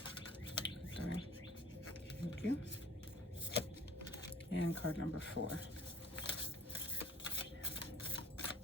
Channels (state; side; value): normal; both; correlation 0.50